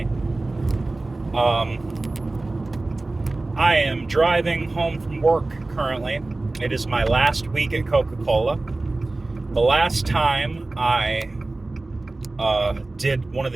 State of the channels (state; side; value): quieter; left; 3.1 dB